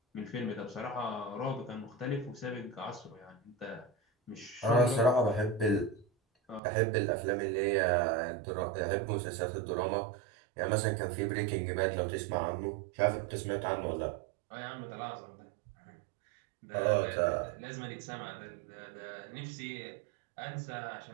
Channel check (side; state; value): left; drops out; at 6.6 s